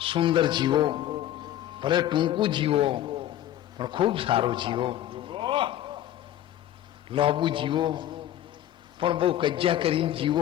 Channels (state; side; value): quieter; right; 12.3 dB